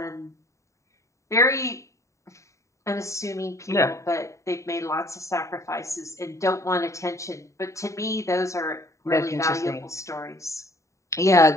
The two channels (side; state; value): right; late; 0.15 ms